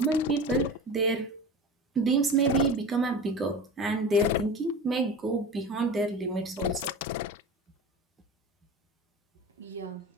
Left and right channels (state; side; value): normal; both; correlation 0.32